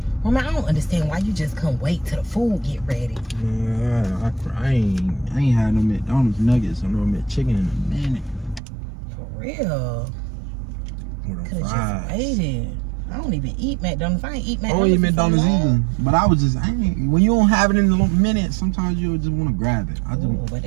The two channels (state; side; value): drops out; left; at 8.6 s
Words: Mama, I don't understand why you just couldn't wait till the food get ready. Man, I ain't had no McDonald's nuggets or no McChicken in a minute. For real. Could have just waited. I don't even eat McDonald's. I ain't eat McDonald's. I don't eat McDonald's either. But I was just, when you don't have it in a minute, sometimes you just want to grab it. But